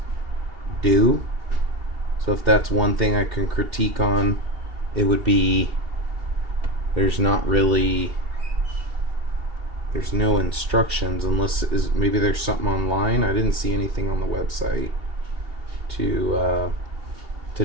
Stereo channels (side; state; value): left; late; 2.7 ms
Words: do. So if that's one thing I can critique on, it would be there's no instructions, unless maybe there's something online. I didn't see anything on the website to